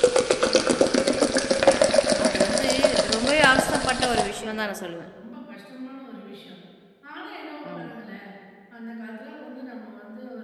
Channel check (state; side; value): identical; both; correlation 1.00